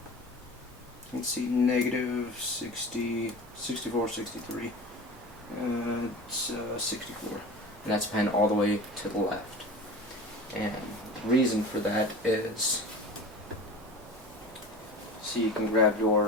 Let's see, negative 60, 64, 63. It's 64, and that's panned all the way to the left. And the reason for that is, so you can grab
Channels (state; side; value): normal; both; correlation 0.35